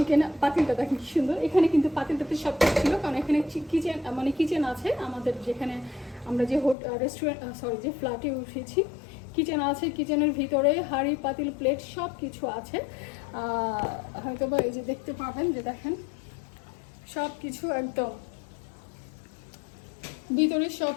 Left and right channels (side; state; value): right; drops out; at 6.8 s